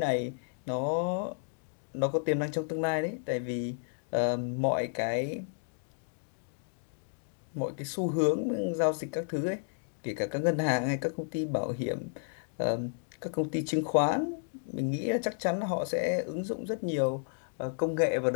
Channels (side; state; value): right; silent; digital silence